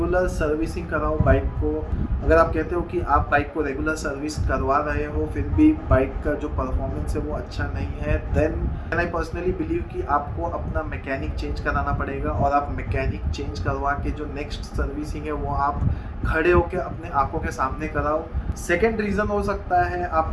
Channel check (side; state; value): both; identical; correlation 1.00